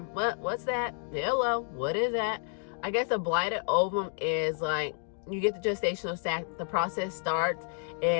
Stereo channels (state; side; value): silent; right; 58 dB below the other